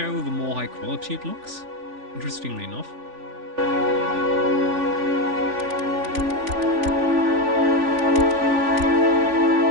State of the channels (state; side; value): late; left; 3.5 ms